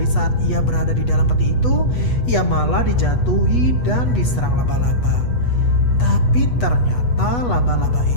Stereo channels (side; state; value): right; late; 8.2 ms